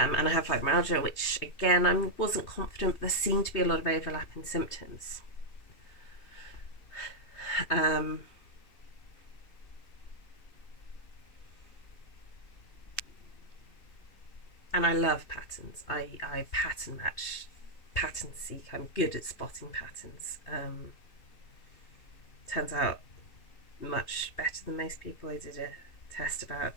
I have fibromyalgia, which again I wasn't confident, but there seemed to be a lot of overlap in symptoms. And I love patterns. I pattern match, pattern seek. I'm good at spotting patterns. Turns out much better than most people. I did a test about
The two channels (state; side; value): late; right; 3.2 ms